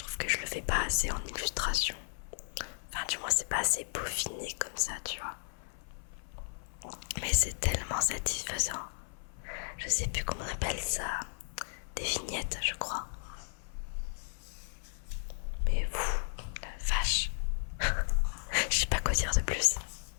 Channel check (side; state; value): right; silent; 55 dB below the other